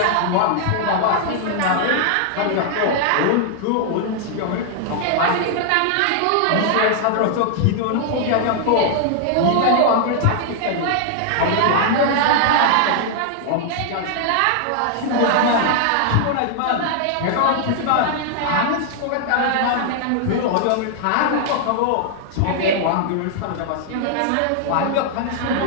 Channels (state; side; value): different; both; correlation -0.01